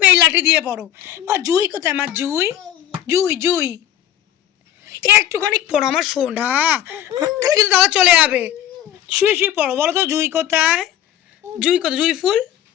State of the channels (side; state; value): right; quieter; 11.5 dB